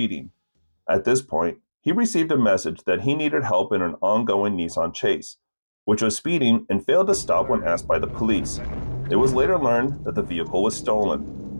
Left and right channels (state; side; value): inverted; both; correlation -1.00